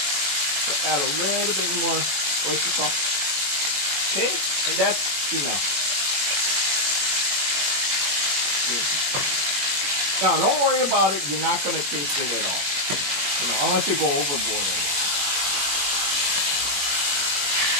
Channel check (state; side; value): late; left; 21 ms